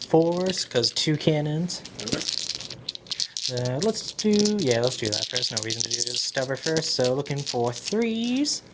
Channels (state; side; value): identical; both; correlation 1.00